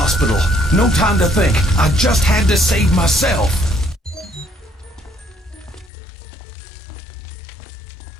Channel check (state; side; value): drops out; right; at 5.9 s